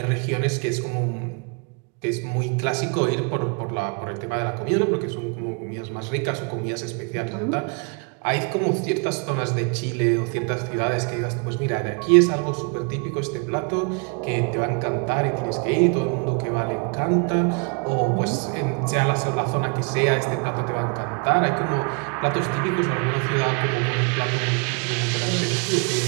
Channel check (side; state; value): left; quieter; 35.9 dB